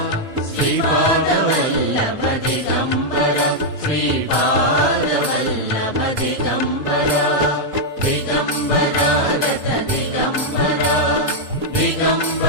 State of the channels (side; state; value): left; late; 4.0 ms